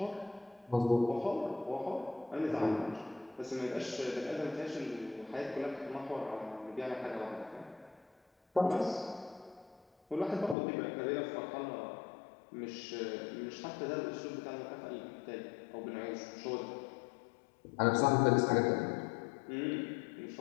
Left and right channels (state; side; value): drops out; right; at 10.6 s